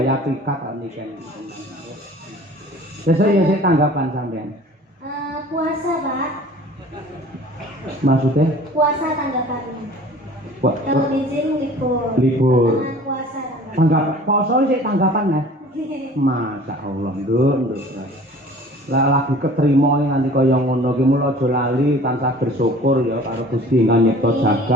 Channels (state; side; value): normal; both; correlation 0.47